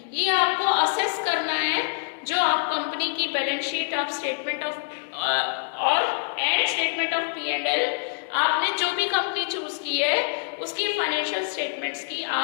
ये आपको असेस करना है। जो आप कंपनी की balance sheet of statement of और एंड स्टेटमेंट ऑफ P&L, आपने जो भी कंपनी चूज की है उसकी फाइनेंशियल स्टेटमेंट्स की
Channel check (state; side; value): silent; right; digital silence